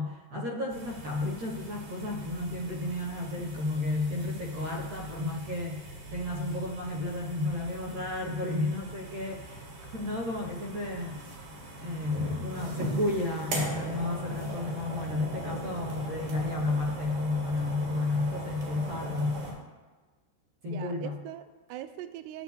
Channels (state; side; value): late; left; 13 ms